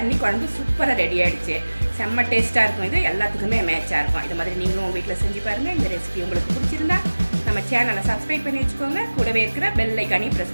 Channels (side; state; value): both; inverted; correlation -1.00